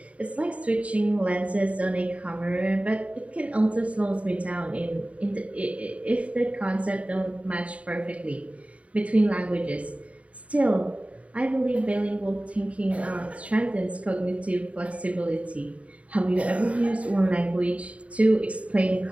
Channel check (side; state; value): left; late; 0.065 ms